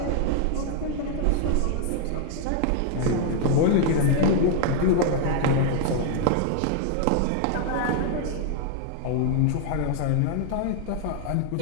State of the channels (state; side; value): different; both; correlation 0.00